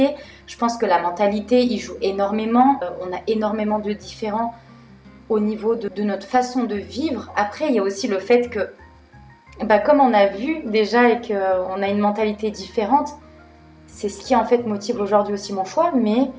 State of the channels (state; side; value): identical; both; correlation 1.00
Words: Je pense que la mentalité y joue énormément. On a énormément de différends au niveau de notre façon de vivre. Après, il y a aussi le fait que, comme on a vu déjà et qu'on a une mentalité différente, c'est ce qui en fait motive aujourd'hui aussi mon choix. Mais